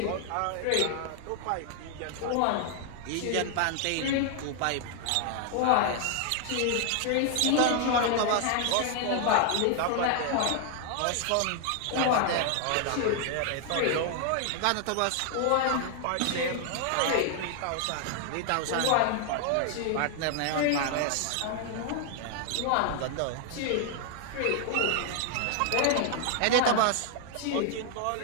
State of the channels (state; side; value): different; both; correlation 0.00